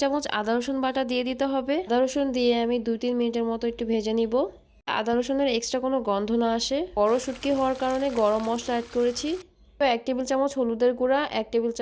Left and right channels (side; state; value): both; identical; correlation 1.00